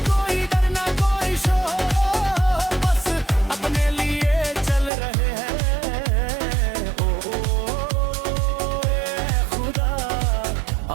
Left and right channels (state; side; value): drops out; left; at 4.9 s